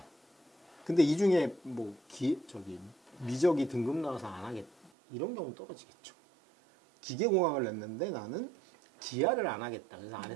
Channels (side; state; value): left; drops out; at 4.9 s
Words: 근데 이 중에 뭐 미적이 등급 나와서 안 하겠 이런 경우는 떨어지겠죠. 기계공학을 냈는데 나는 기하를 안 하겠다. 그래서 안